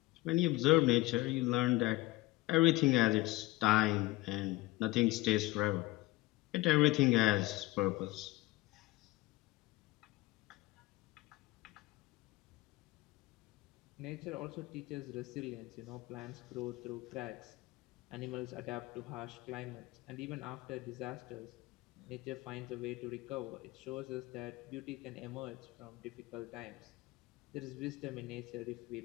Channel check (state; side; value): quieter; right; 19.7 dB